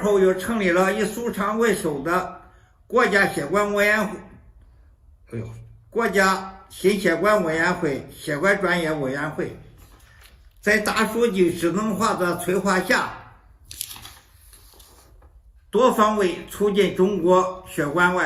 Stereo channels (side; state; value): both; identical; correlation 1.00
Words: 后又成立了以苏昌为首的国家血管委员会，国家心血管委员会血管专业委员会。在大数据智能化的催化下，多方位促进中国血管